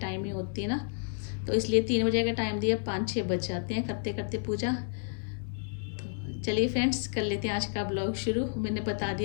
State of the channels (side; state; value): right; silent; digital silence